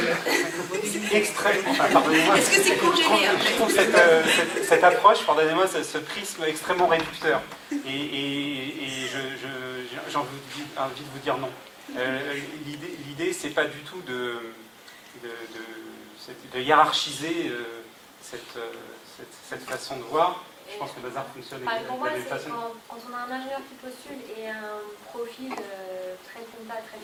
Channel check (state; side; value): identical; both; correlation 1.00